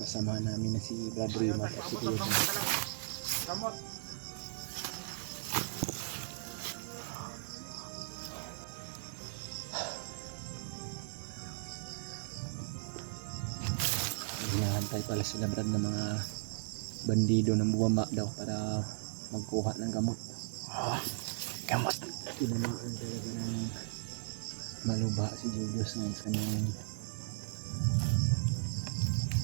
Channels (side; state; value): left; silent; 53 dB below the other